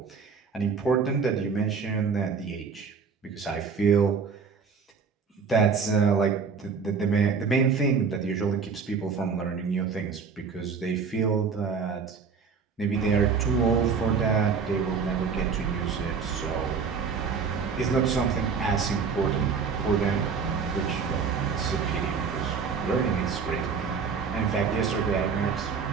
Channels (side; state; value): left; quieter; 5.6 dB